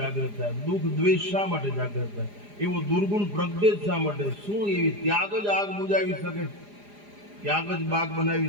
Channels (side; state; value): left; late; 4.9 ms